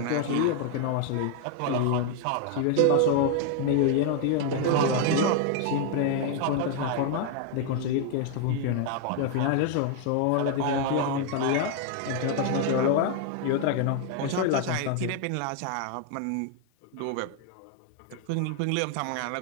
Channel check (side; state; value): both; different; correlation 0.00